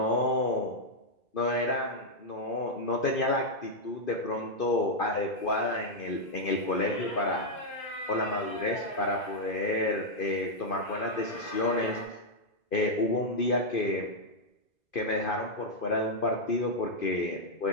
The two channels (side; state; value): right; late; 2.5 ms